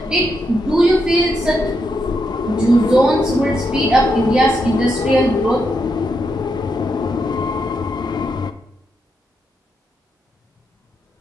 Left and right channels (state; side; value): normal; both; correlation 0.82